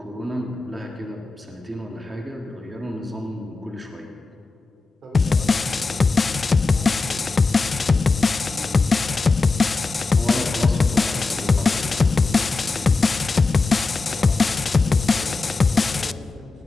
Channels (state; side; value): quieter; right; 3.9 dB